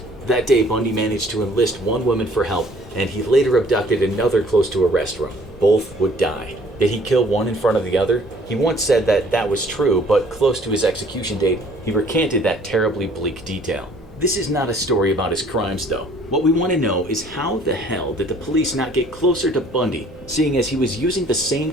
That day, Bundy managed to enlist 1 woman for help, and he later abducted another close to a restaurant. Both would die. Did he kill one in front of the other? He once said that that was true, but close to his execution date, he recanted that terribly bleak detail. This is not a story about his crimes, though. What we want to know is how the hell did the police not get closer to Bundy, seeing as he was using the same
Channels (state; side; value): normal; both; correlation 0.56